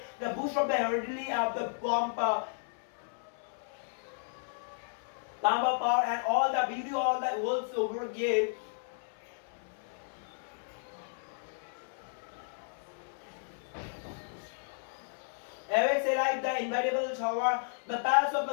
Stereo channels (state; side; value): silent; right; 55 dB below the other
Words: The boost of the heredity of the power and all the beauty, all the worlds over gave. Awakes alive the invariable shower, the paths of